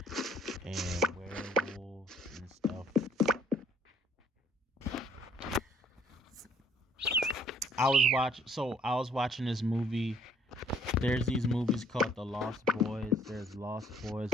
and werewolves and stuff. I was watching this movie. There's these movies called The Lost Boys. There's Lost Boys,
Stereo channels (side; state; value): both; normal; correlation 0.61